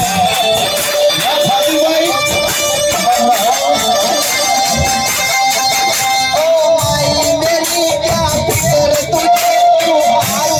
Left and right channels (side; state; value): both; identical; correlation 1.00